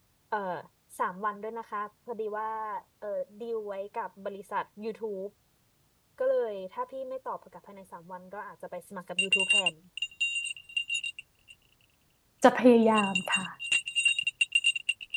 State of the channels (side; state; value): both; identical; correlation 1.00